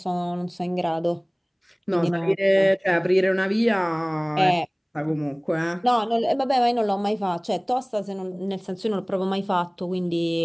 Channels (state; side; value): identical; both; correlation 1.00